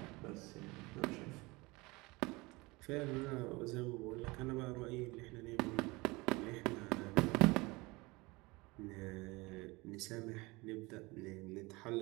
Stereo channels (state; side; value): quieter; left; 23.7 dB